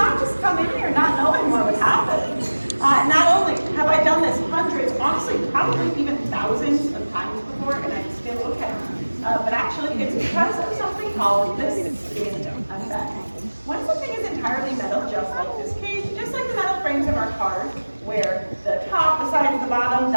just come in here not knowing what would happen. Not only have I done this hundreds, honestly, probably even thousands of times before, and I'm still okay. But actually, it's because of something called the skin effect. When something is entirely metal, just like this cage, just like the metal frames of our cars, where the top, the sides, the bottom,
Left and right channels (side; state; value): both; inverted; correlation -1.00